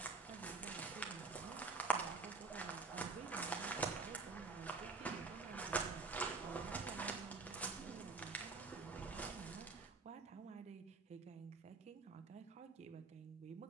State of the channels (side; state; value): left; quieter; 4.2 dB